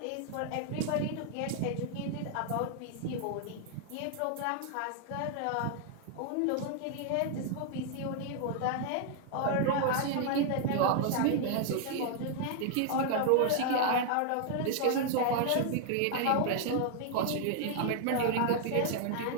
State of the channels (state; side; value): different; both; correlation 0.00